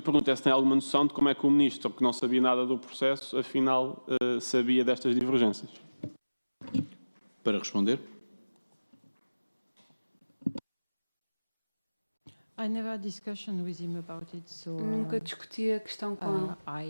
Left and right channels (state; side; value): inverted; both; correlation -1.00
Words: pergunto é se tem alguma noção de como é que o ministro, que não sabia nada do processo, afinal sabia destas divergências. Para responder. I never had discussion with him about it, so Nunca discuti a questão com ele.